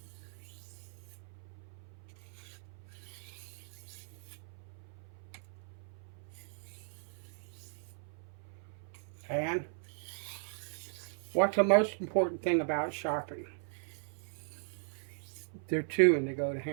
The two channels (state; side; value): silent; left; 53 dB below the other